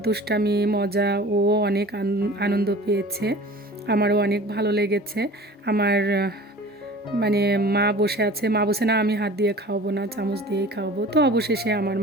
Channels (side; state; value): both; normal; correlation 0.42